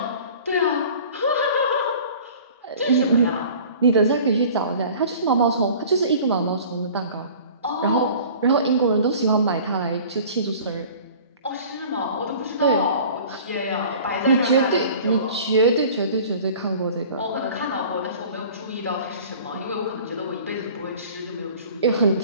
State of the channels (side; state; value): both; inverted; correlation -0.45